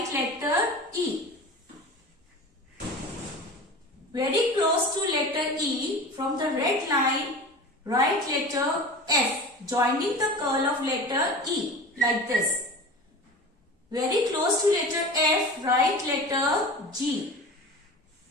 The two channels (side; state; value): both; normal; correlation 0.34